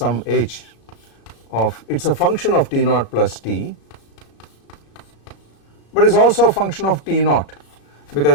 h of, it is a function of t naught plus t, but it is also a function of t naught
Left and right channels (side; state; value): right; late; 34 ms